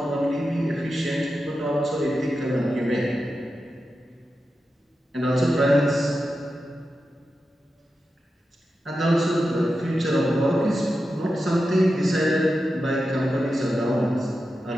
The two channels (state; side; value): normal; both; correlation 0.90